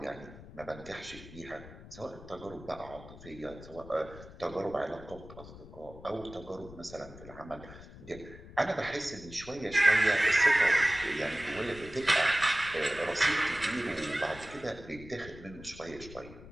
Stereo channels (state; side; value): noise; left; rumble, 16 dB below the sound